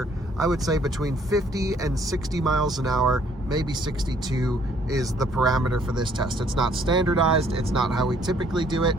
I would say between 50 and 60 miles an hour, maybe 62 is the parameter for this test. It's not standardized. It's not how we typically do it.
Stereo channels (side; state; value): both; normal; correlation 0.63